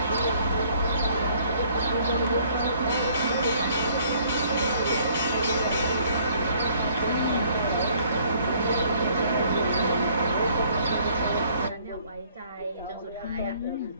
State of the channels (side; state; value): both; inverted; correlation -0.61